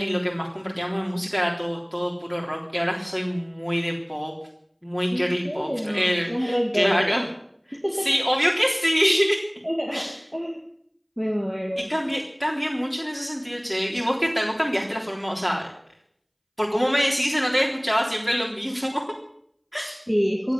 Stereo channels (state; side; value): identical; both; correlation 1.00